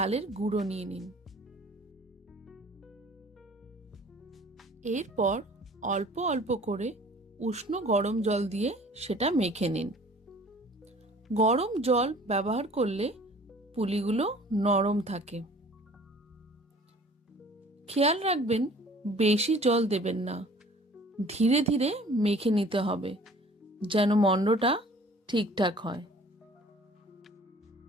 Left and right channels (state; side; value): normal; both; correlation 0.50